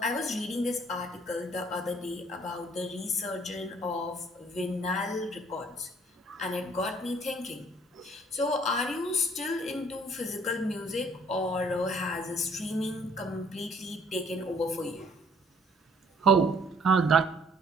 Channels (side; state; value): both; normal; correlation 0.60